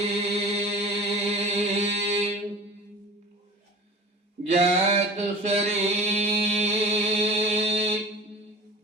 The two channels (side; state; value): both; normal; correlation 0.38